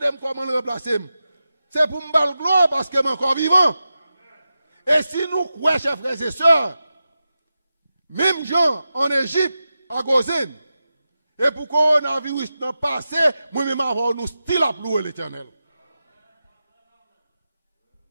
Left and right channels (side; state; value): both; inverted; correlation -0.91